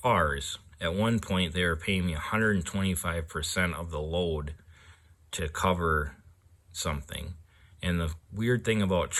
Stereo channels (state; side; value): identical; both; correlation 1.00